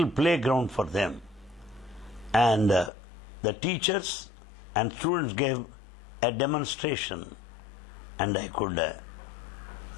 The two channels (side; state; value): right; drops out; at 2.9 s